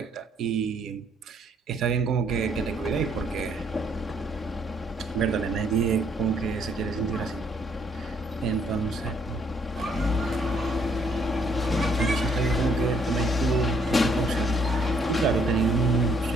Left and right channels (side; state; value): both; normal; correlation 0.67